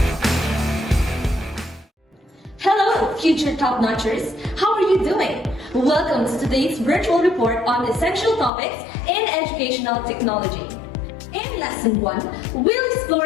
Future top-notchers, how are you doing? Welcome to today's virtual report on essential topics in educational technology. In Lesson 1, we'll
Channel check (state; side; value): drops out; right; at 8.5 s